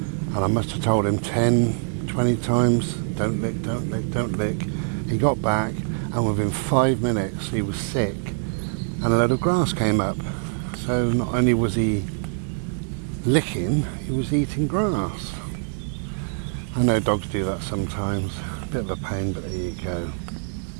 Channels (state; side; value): silent; left; digital silence